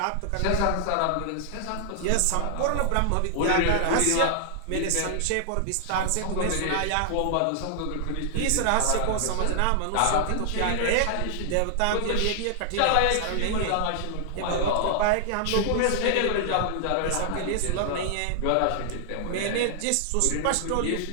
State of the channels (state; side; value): different; both; correlation 0.00